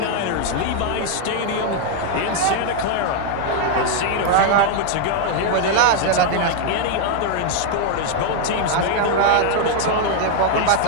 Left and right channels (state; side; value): different; both; correlation 0.00